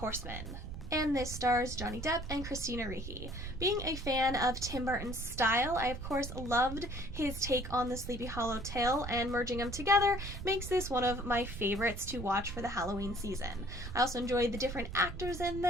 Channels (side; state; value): right; noise; rumble, 8 dB below the sound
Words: And this stars Johnny Depp and Christina Ricci. Being a fan of Tim Burton's style, I of course loved his take on the Sleepy Hollow tale, and merging them together makes this one of my favorites to watch for the Halloween season. I also enjoyed the different actors in